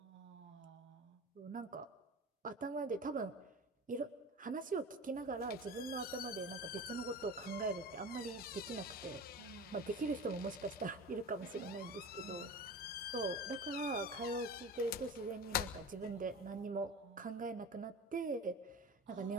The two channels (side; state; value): both; normal; correlation 0.32